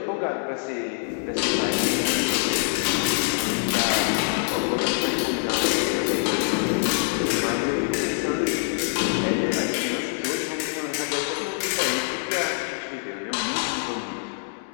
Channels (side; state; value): right; silent; 62 dB below the other